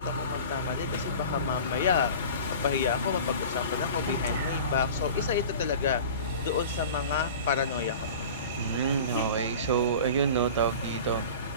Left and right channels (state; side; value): inverted; both; correlation -0.38